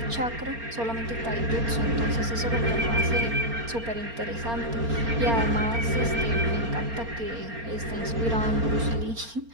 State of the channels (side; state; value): left; late; 4.3 ms